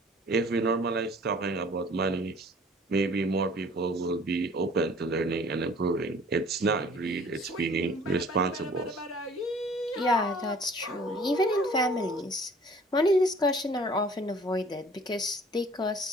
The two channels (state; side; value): normal; both; correlation 0.52